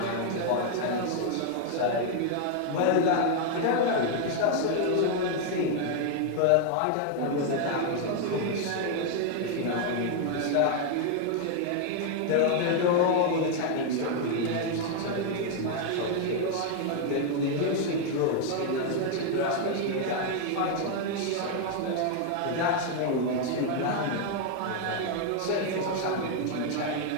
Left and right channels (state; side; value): different; both; correlation 0.00